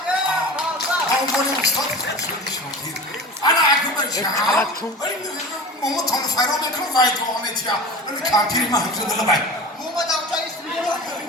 عنوان استاد خورشید شاکر انا اگه بشم ماما تانو فرا میکنم وای دعا میتیم ولی کمپیر ما همزه دلو بای ماما دمجا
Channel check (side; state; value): both; normal; correlation 0.34